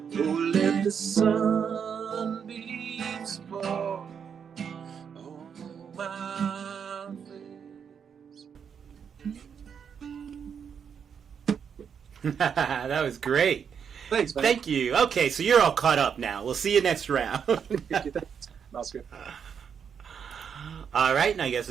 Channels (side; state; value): left; quieter; 7.2 dB